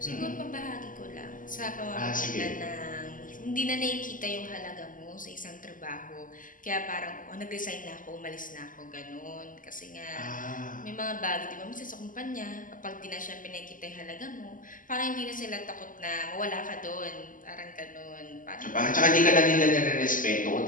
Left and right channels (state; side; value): late; right; 0.39 ms